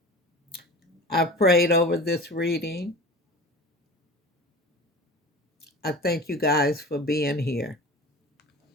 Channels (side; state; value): both; normal; correlation 0.36